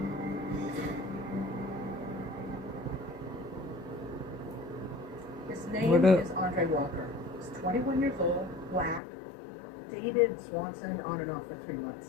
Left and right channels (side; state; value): right; drops out; at 9.0 s